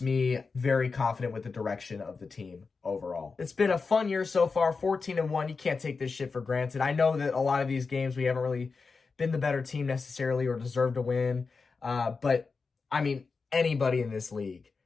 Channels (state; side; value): quieter; right; 4.6 dB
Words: me very confident with the direction of the team overall. It's been a fun year so far, 14-1. You can't take this shit for granted. I know that a lot of these games we haven't really been the better team necessarily or deserved to win. But, I mean, anybody in this league,